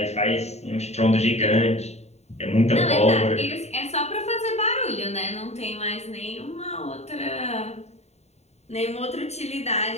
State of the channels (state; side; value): late; right; 0.32 ms